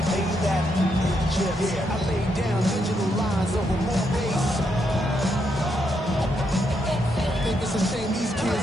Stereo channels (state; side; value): normal; both; correlation 0.79